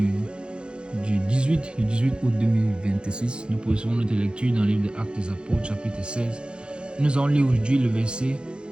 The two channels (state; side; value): late; left; 0.052 ms